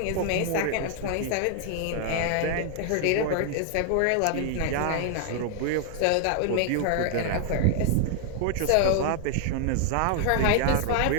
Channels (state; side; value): different; both; correlation 0.00